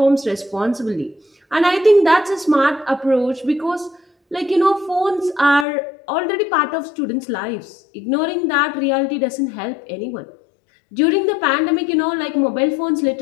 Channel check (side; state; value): right; drops out; at 5.7 s